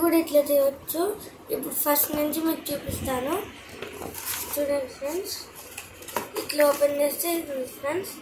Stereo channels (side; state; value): both; identical; correlation 1.00